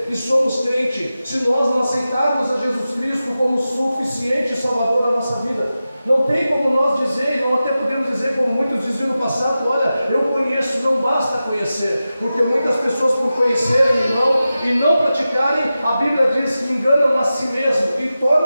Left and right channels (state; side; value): inverted; both; correlation -0.93